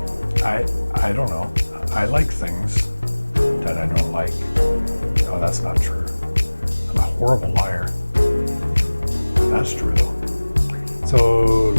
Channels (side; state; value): both; inverted; correlation -1.00